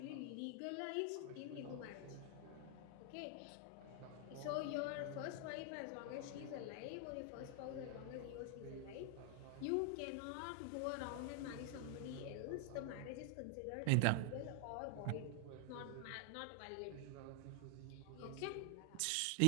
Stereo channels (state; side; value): different; both; correlation 0.00